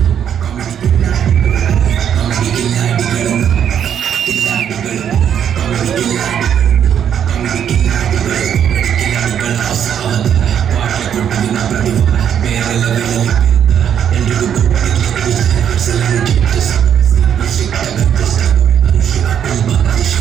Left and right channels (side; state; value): left; quieter; 8.9 dB